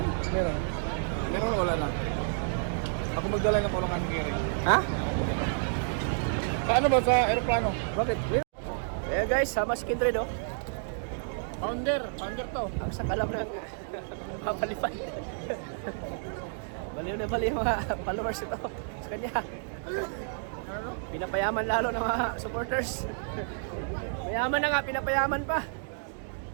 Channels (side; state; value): left; silent; digital silence